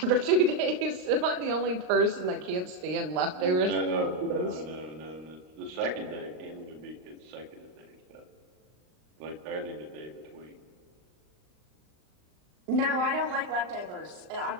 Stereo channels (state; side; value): late; left; 39 ms